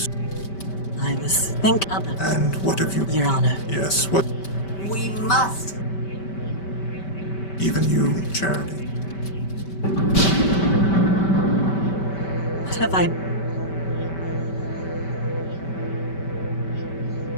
I was thinking of it, And what have you... Your Honor. Yes, what... We must. Even you, Charity. What have I...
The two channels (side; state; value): right; late; 5.2 ms